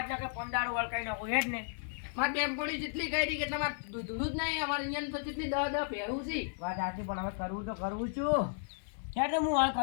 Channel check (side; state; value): right; silent; digital silence